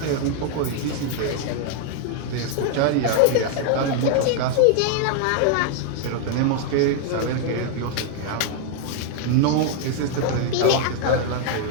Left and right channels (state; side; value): different; both; correlation 0.00